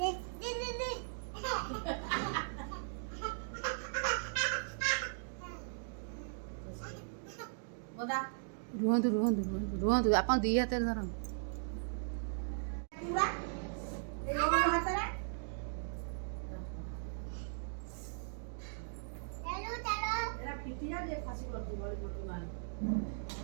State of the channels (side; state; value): left; silent; digital silence